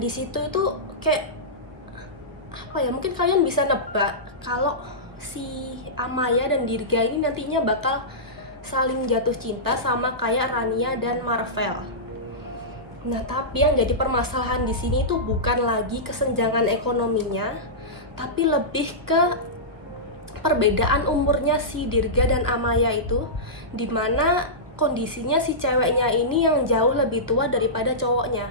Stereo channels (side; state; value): left; late; 1.1 ms